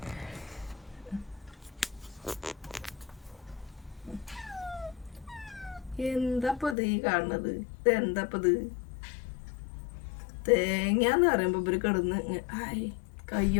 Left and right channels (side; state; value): right; drops out; at 6.8 s